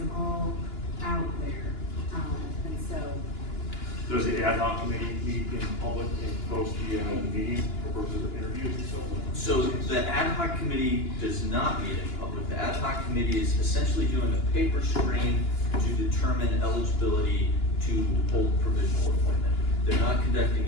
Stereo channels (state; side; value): late; right; 2.9 ms